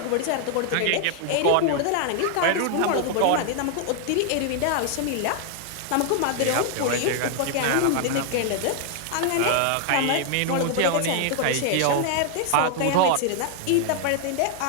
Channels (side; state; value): both; different; correlation 0.00